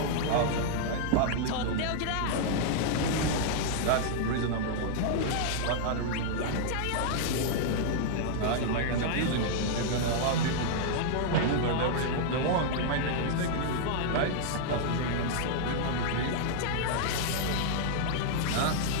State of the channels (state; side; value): different; both; correlation -0.01